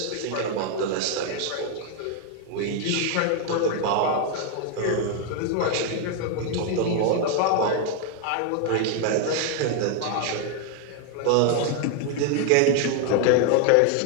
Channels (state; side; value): different; both; correlation 0.01